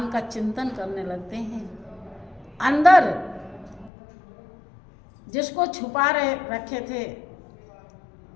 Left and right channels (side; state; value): right; drops out; at 3.9 s